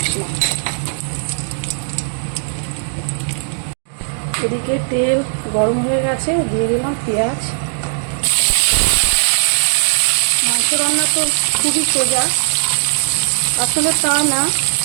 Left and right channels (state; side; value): silent; left; 67 dB below the other